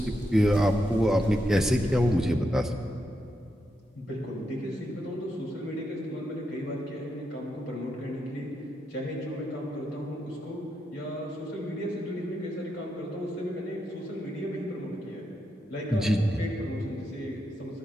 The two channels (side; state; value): both; normal; correlation 0.83